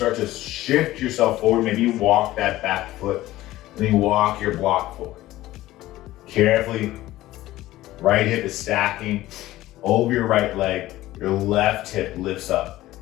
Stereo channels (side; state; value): right; quieter; 16.1 dB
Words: to shift yourself forward, maybe you walk that back foot, and then you walk your block forward. Carefully, right hip is stacking over your right leg, your left hip lifts up.